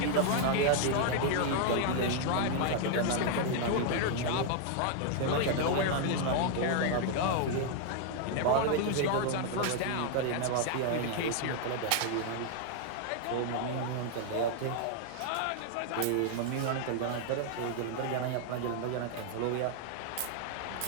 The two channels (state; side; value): different; both; correlation 0.00